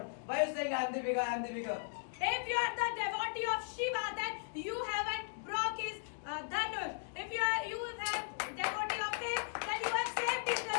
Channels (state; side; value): silent; right; digital silence